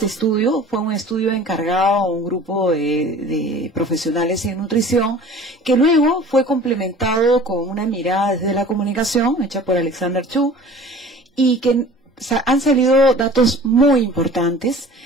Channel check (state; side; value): normal; both; correlation 0.44